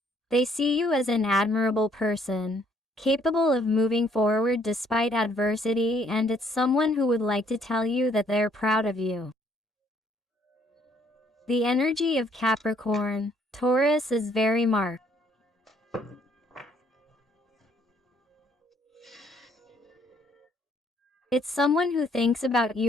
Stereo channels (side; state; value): both; normal; correlation 0.65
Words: They see you as an admirable person, capable of moving forward despite adversity, and it's someone who would like to tell you that they're proud of you. The energy of Capricorn, Taurus is very marked. It's someone who thinks about